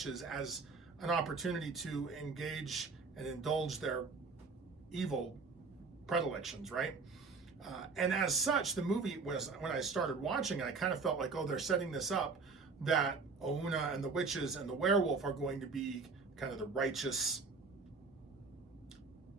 as an opportunity to engage and indulge their evil predilections, right? And as such, the movie was, when I started watching it, I kind of felt like, oh, they're setting this up that Ouna and the witches and the werewolf are going to be kind of the righteous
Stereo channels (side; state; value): left; quieter; 4.5 dB